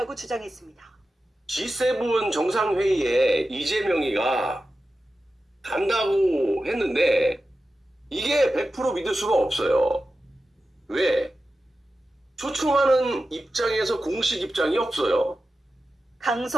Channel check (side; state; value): both; normal; correlation 0.93